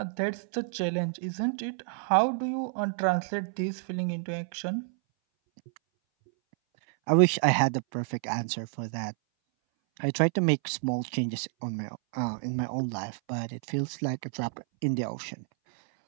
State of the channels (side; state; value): left; silent; 58 dB below the other